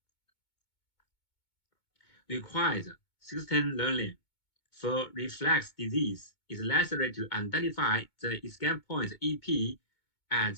Requires system learning. For reflex disease, it's necessary to identify the escape point EP at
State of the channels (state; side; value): late; right; 2.2 ms